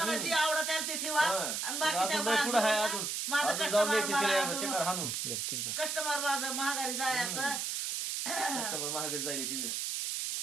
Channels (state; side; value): noise; right; hiss, 1 dB below the sound